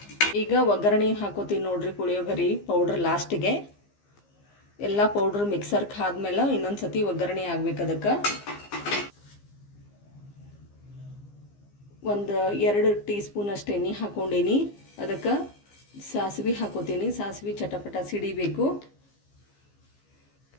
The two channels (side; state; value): right; late; 15 ms